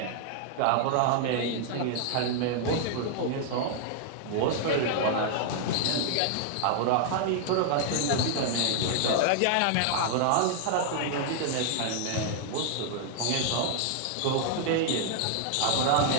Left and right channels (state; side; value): different; both; correlation 0.00